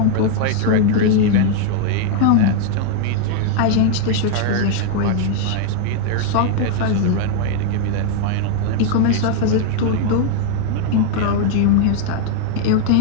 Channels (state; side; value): different; both; correlation 0.00